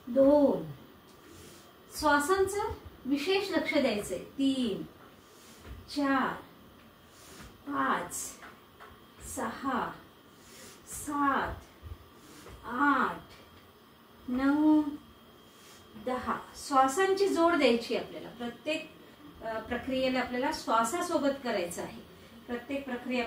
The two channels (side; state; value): both; identical; correlation 1.00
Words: 2। श्वासांचं विशेष लक्ष द्यायचंय। 3 4 5 6 7 8 9 10। श्वासांची जोड द्यायची आपल्याला। प्रत्येक प्रक्रियेला आपल्याला श्वासासोबत करायचं आहे। प्रत्येक प्रक्रिया